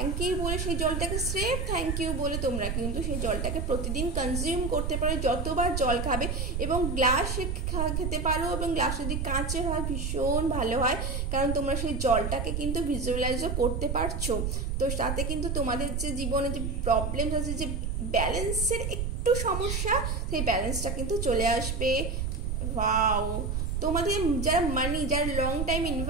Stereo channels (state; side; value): noise; right; rumble, 2 dB below the sound